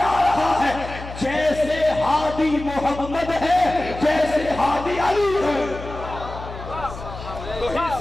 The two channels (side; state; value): left; noise; hum, 12 dB below the sound